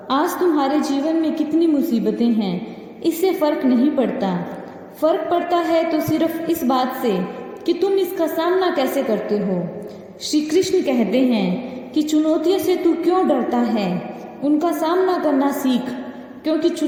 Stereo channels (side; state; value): both; identical; correlation 1.00